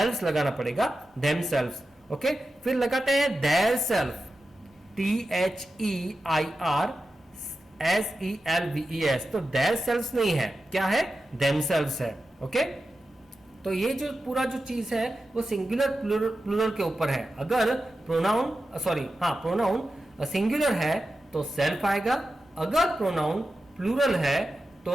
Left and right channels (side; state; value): both; normal; correlation 0.92